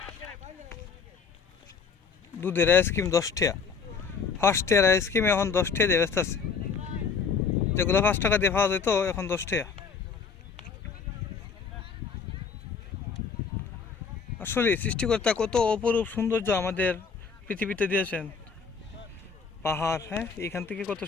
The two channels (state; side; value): quieter; right; 5.6 dB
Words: দুধের আইসক্রিম 10 টাকা, ফার্স্ট ইয়ার আইসক্রিম এখন 10 টাকা দিয়ে ব্যস্ত আছে। যেগুলো 5 টাকা দিয়ে পাওয়া যেত এখন 10 টাকা। আসলে সৃষ্টিকর্তা কত অপরূপ সৌন্দর্য আমাদের পৃথিবীতে দিয়েছেন। পাহাড়, হ্যাঁ, এখান থেকে কত